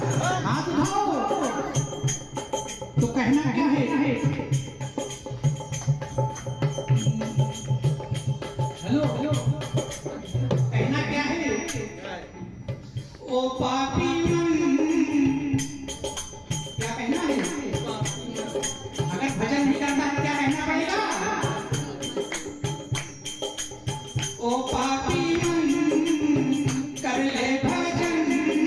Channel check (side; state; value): both; identical; correlation 1.00